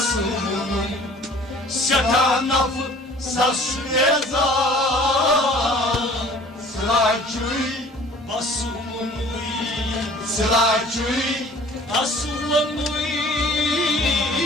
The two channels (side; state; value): both; normal; correlation 0.50